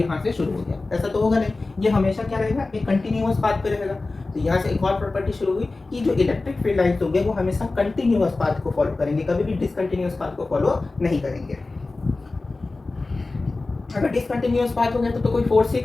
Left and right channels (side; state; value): right; quieter; 3.4 dB